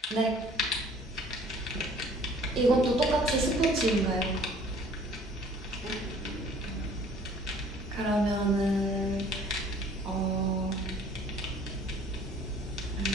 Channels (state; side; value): normal; both; correlation 0.53